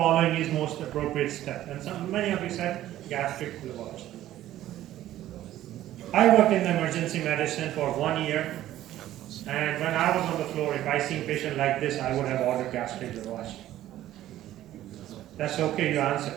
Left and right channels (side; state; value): left; quieter; 13.5 dB